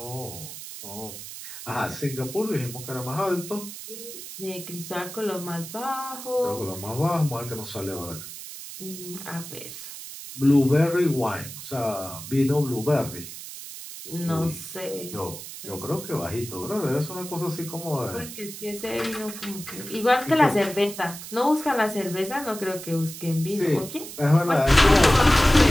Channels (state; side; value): noise; right; hiss, 11 dB below the sound